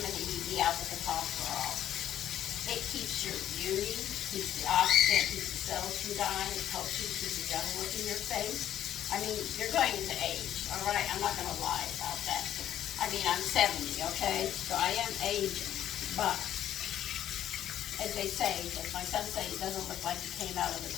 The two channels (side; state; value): right; quieter; 11.3 dB